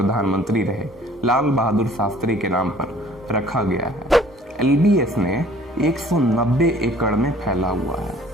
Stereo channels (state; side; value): normal; both; correlation 0.53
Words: रहे लाल बहादुर शास्त्री के नाम पर रखा गया है। LBSNA 190 एकड़ में फैला हुआ है।